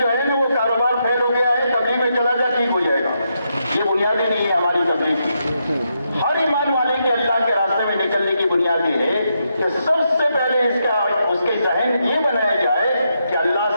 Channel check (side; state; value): both; inverted; correlation -0.81